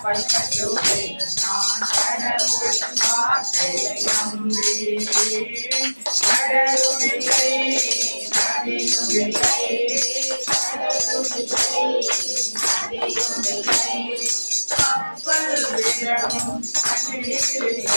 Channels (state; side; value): inverted; both; correlation -1.00